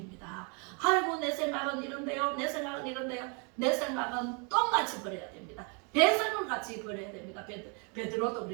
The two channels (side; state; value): left; quieter; 34.9 dB